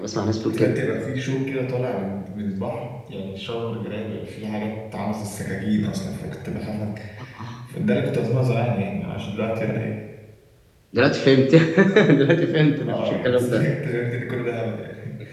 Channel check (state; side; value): identical; both; correlation 1.00